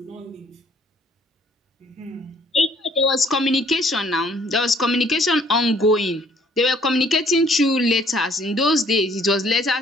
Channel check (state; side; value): normal; both; correlation 0.61